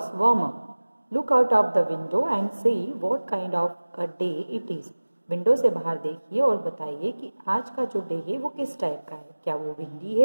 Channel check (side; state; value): both; inverted; correlation -1.00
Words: warm up. Look out of the window and say what kind of a day it is. Window से बाहर देखिए और बताइए कि आज का जो डे है वो किस टाइप का है. क्या वो विंडी